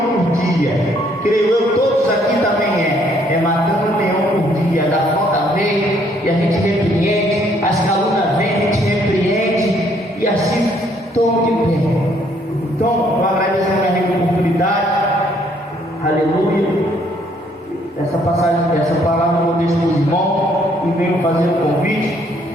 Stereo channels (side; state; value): both; normal; correlation 0.66